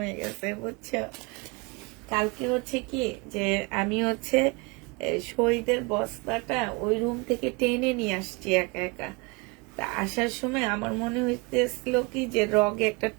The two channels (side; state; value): left; quieter; 28.2 dB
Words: গেছে, বুঝছো। কালকে হচ্ছে কি যে আমি হচ্ছে শহীদের বস্তাটা ওই রুম থেকে টেনে নিয়ে আসছি একা একা। তা আসার সময় আমার মনে হইতেছিল কি যে রগে একটা